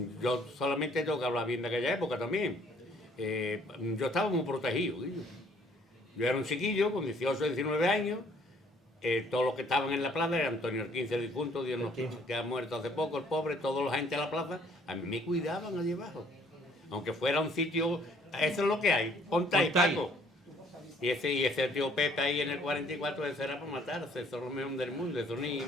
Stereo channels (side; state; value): both; normal; correlation 0.61